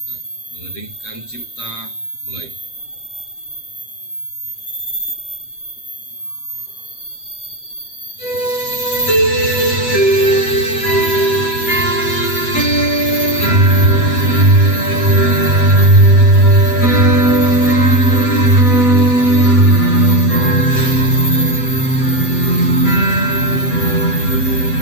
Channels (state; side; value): late; right; 8.0 ms